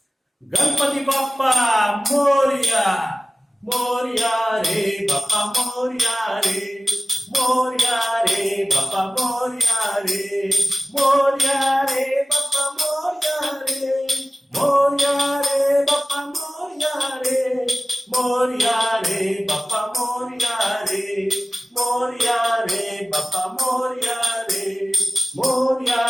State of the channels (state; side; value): normal; both; correlation 0.96